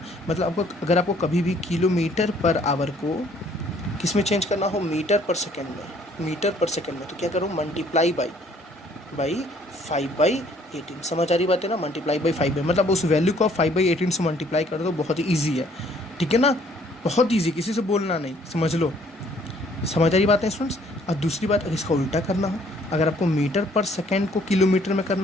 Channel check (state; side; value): normal; both; correlation 0.61